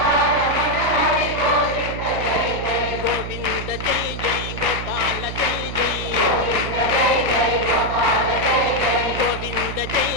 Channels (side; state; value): right; noise; hum, 7 dB below the sound